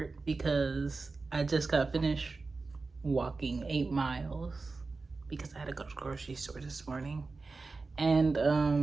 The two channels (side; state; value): left; quieter; 3.9 dB